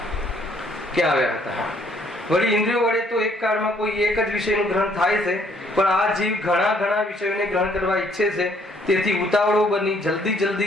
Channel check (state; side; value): normal; both; correlation 0.65